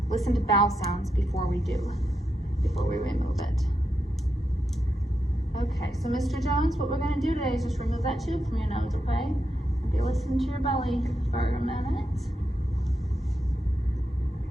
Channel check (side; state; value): both; normal; correlation 0.85